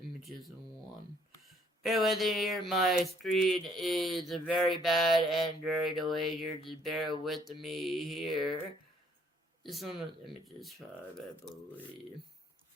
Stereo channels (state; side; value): normal; both; correlation 0.64